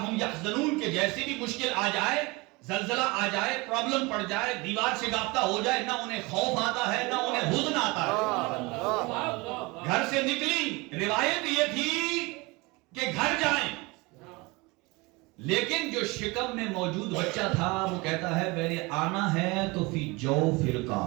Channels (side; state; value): left; quieter; 24.9 dB